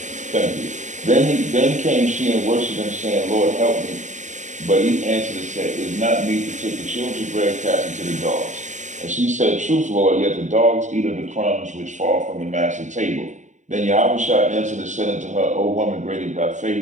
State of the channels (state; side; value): late; left; 0.35 ms